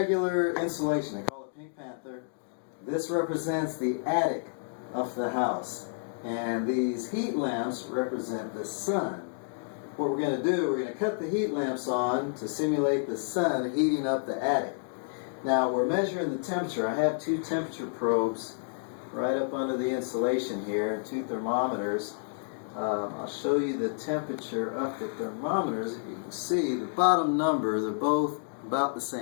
insulation. They call it Pink Panther. This represents the attic of the house. And these heat lamps represent the sun. What we're going to do, we're going to cut the heat lamps on to simulate the sun heating up the attic. Now we're measuring the temperature. I have two temperature probes right up under the insulation here, two thermometers. I'll show you the temperature of the thermometers. If you can see, the bottom number, they're both about the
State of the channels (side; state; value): right; silent; digital silence